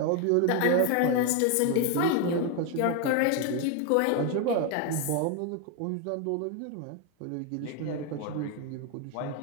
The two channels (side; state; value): both; different; correlation 0.01